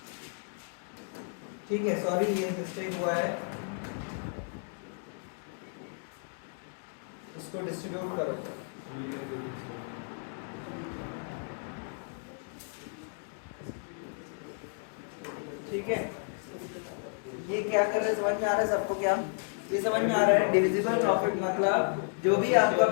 ठीक है, सॉरी ये मिस्टेक हुआ है, इसको डिस्ट्रीब्यूट करो। ठीक है, ये क्या कर रहे हैं समझ में आ रहा है सबको? क्या ये समझ में आ रहा है? डिविजिबल प्रॉफिट मतलब जो भी आपका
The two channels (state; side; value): silent; right; 56 dB below the other